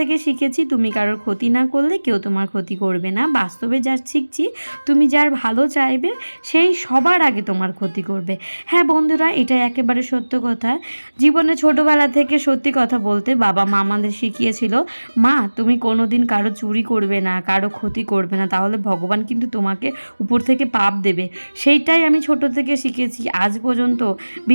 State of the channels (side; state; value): both; inverted; correlation -1.00